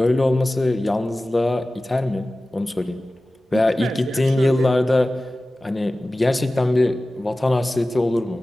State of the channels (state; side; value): normal; both; correlation 0.96